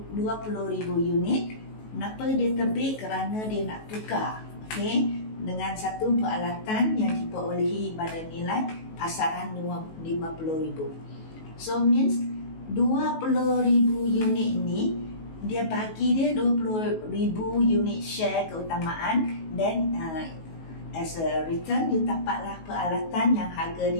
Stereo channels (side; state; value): right; late; 19 ms